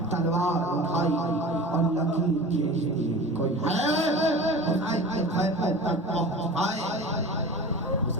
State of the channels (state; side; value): normal; both; correlation 0.36